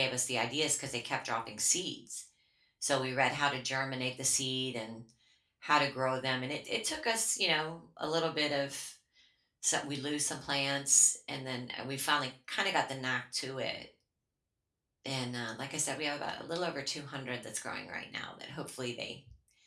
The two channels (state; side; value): identical; both; correlation 1.00